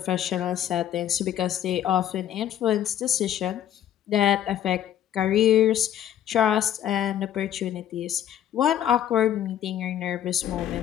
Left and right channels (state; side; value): quieter; right; 10.9 dB